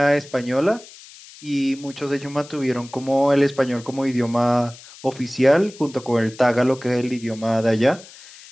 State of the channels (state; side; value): noise; left; hiss, 20 dB below the sound